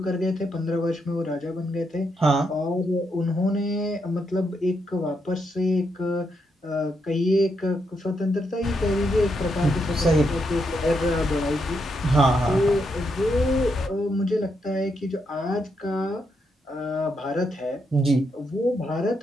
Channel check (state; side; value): normal; both; correlation 0.80